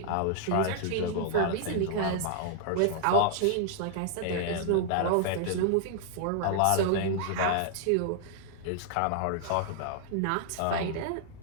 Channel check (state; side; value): different; both; correlation 0.00